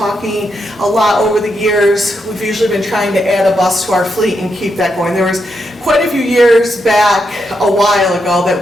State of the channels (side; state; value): both; normal; correlation 0.82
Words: a lot over the years. We've usually been trying to add a bus to our fleet and keep that going. There was quite a few years back, a while ago, that